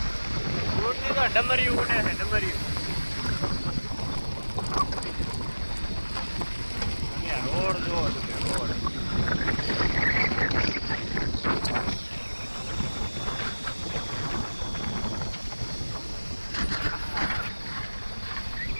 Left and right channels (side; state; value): both; inverted; correlation -1.00